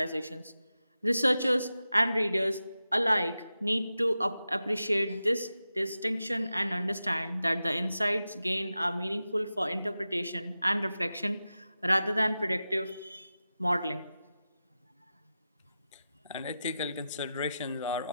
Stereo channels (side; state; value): both; inverted; correlation -0.92